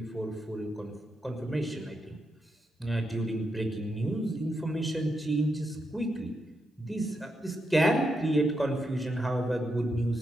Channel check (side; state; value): both; normal; correlation 0.83